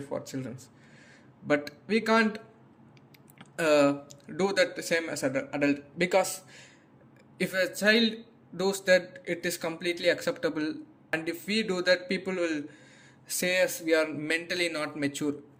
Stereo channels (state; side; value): identical; both; correlation 1.00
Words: children, but we can't uh, do that the same as an adult, because if a child does that, it is completely acceptable, and if we do that, people will say us we are mentally not mature